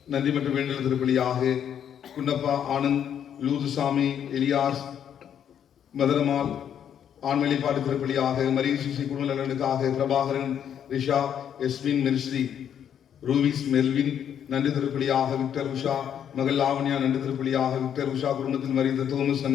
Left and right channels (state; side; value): quieter; right; 9.0 dB